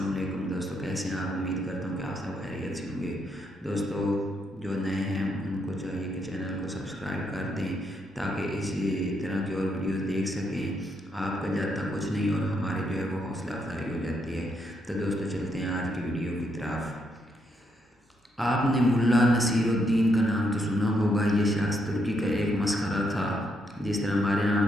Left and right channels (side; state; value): both; normal; correlation 0.77